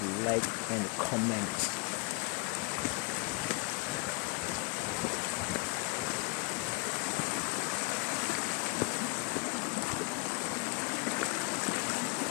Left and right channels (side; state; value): right; quieter; 30.1 dB